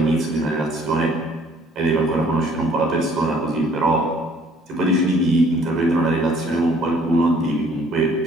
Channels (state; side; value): normal; both; correlation 0.59